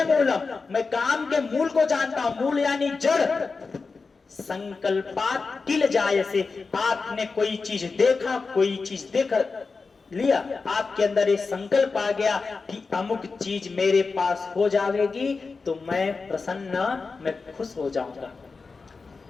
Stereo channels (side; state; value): right; quieter; 4.4 dB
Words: मूलम, मैं काम के मूल को जानता हूं, मूल यानी जड़। संकल्पात् किल जायसे, आपने कोई चीज देखा, कोई चीज देख लिया, आपके अंदर ये संकल्प आ गया कि अमुक चीज मेरे पास हो जाएगी तो मैं प्रसन्न, मैं खुश हो जाऊंगा।